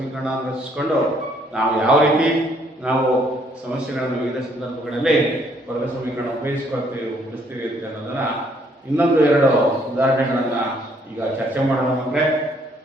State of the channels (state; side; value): normal; both; correlation 0.66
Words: ರಚಿಸಿಕೊಂಡು ನಾವು ಯಾವ ರೀತಿ ನಾವು ಸಮಸ್ಯೆಗಳನ್ನು ವಿವಿಧ ಸಂದರ್ಭಗಳಲ್ಲಿ ವರ್ಗ ಸಮೀಕರಣ ಉಪಯೋಗಿಸ್ಕೊಳ್ತೀವಿ ಬಿಡಿಸ್ತೀವಿ ಅಂತ ಅನ್ನೋದನ್ನು ಇನ್ನೊಂದು ಎರಡು ಉದಾಹರಣೆಗಳನ್ನು ಈಗ ಚರ್ಚೆ ಮಾಡೋಣ ಮಕ್ಕಳೇ.